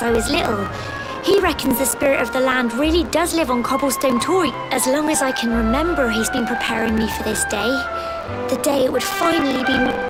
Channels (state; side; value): identical; both; correlation 1.00